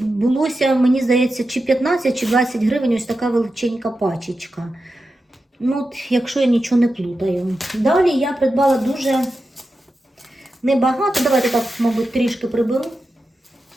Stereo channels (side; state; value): both; normal; correlation 0.90